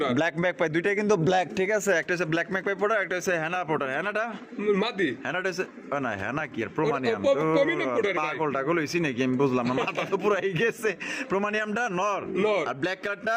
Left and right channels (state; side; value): identical; both; correlation 1.00